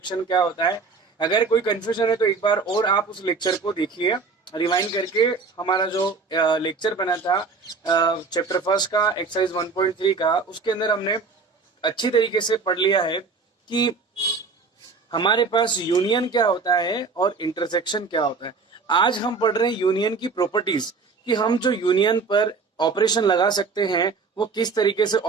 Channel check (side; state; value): left; quieter; 4.6 dB